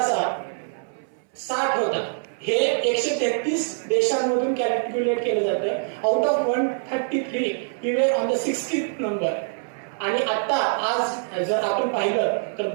60 होता. हे 133 देशांमधून कॅल्क्युलेट केलं जातं. Out of 133 we were on the 60th number. आणि आता आज जर आपण पाहिलं तर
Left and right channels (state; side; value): silent; left; 62 dB below the other